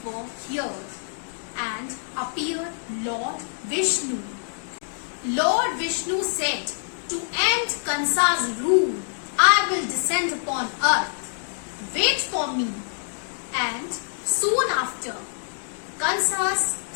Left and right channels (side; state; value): right; silent; digital silence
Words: were heard and appeared Lord Vishnu. Lord Vishnu said, to end Kansa's rule, I will descend upon earth. Wait for me. And soon after, Kansa's